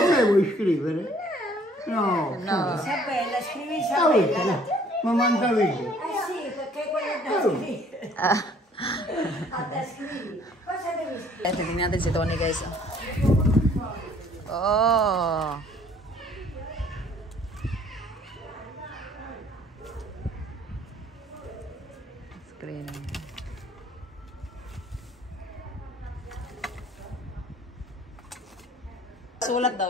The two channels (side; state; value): both; normal; correlation 0.58